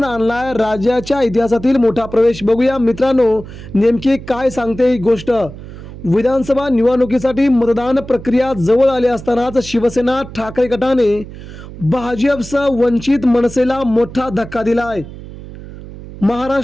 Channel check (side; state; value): right; noise; hum, 14 dB below the sound